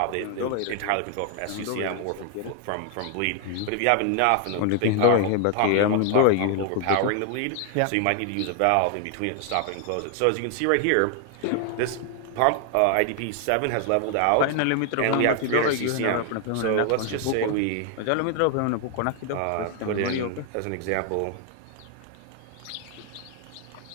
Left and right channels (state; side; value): different; both; correlation 0.00